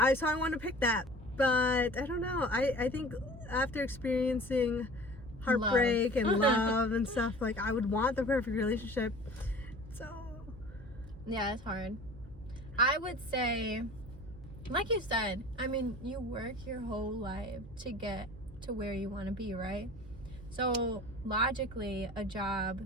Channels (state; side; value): noise; right; hum, 17 dB below the sound